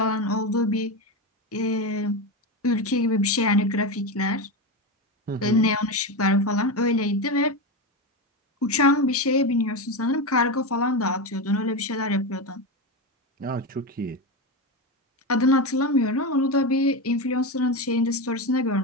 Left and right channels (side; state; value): both; normal; correlation 0.16